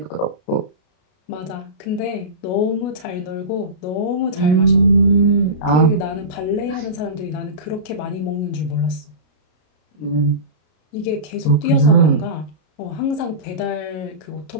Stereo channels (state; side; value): late; right; 33 ms